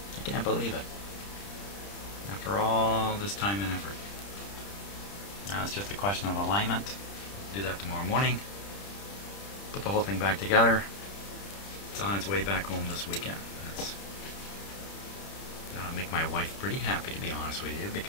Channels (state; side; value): late; right; 30 ms